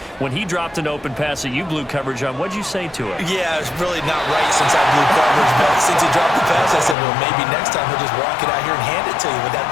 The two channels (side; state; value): right; drops out; at 7.0 s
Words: when he dropped an open pass that you blew coverage on, what'd you say to him? Yeah, it's really not right since I blew coverage, but since he dropped the pass, I said, well, maybe next time he'll just walk it out here and hand it to you. Would